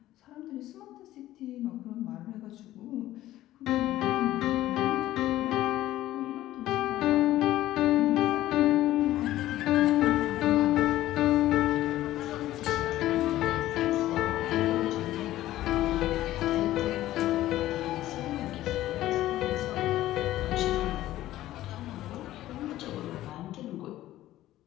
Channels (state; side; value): quieter; right; 14.7 dB